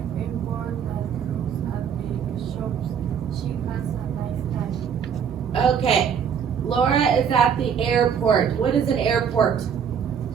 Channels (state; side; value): quieter; left; 7.5 dB